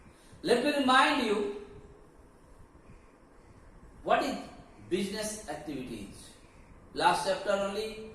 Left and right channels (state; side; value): identical; both; correlation 1.00